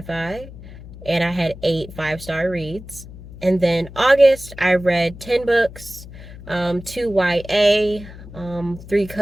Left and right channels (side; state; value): left; noise; hum, 16 dB below the sound